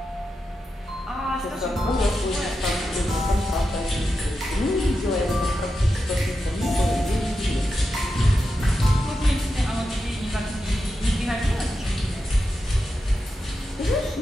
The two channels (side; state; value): both; normal; correlation 0.89